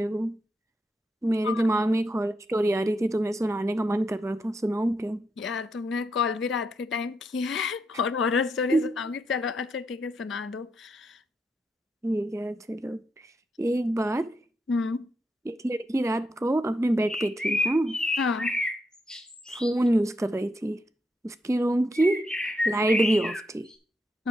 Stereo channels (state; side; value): normal; both; correlation 0.81